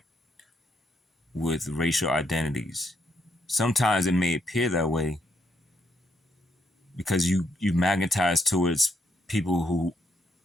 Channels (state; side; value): normal; both; correlation 0.76